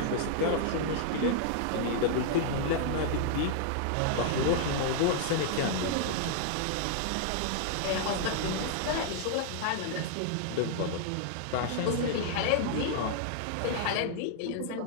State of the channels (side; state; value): both; different; correlation -0.01